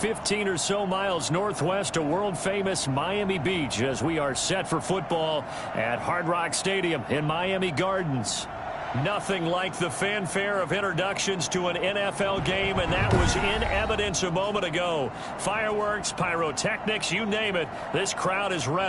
or so miles northwest of world-famous Miami Beach as we are set for football at Hard Rock Stadium in Miami Gardens. Nothing like the fanfare of introductions to an NFL game, and that was in evidence a moment ago. Fireworks, pyrotechnics, you name it. This crowd is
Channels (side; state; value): both; identical; correlation 1.00